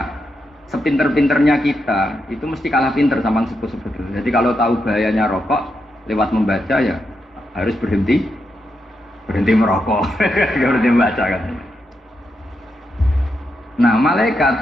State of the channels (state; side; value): normal; both; correlation 0.84